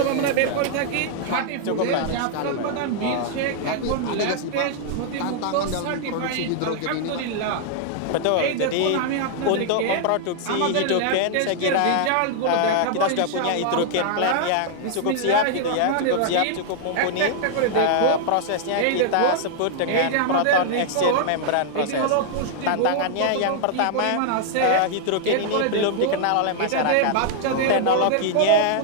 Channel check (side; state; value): both; different; correlation -0.01